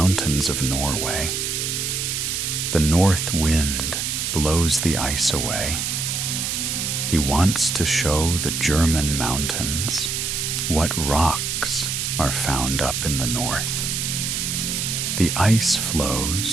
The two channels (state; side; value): noise; right; hiss, 1 dB below the sound